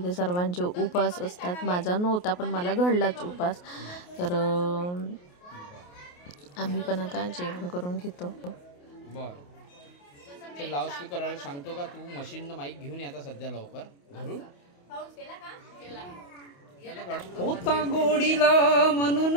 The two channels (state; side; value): late; right; 28 ms